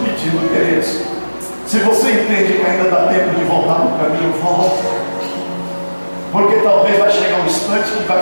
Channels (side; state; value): both; inverted; correlation -1.00